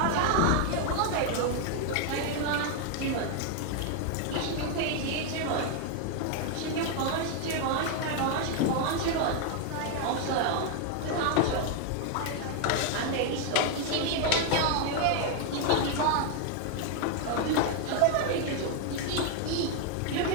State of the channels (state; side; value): different; both; correlation 0.01